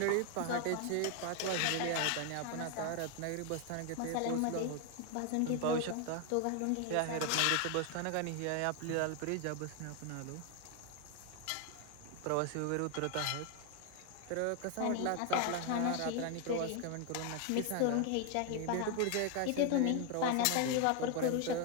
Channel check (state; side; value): different; both; correlation 0.01